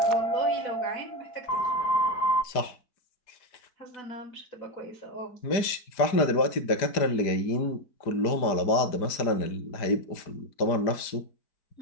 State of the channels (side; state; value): right; late; 4.9 ms